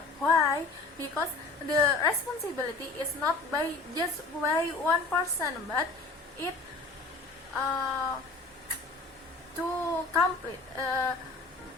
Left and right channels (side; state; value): right; quieter; 3.4 dB